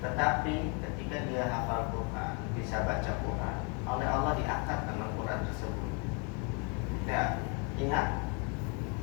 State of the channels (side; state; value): right; quieter; 34.7 dB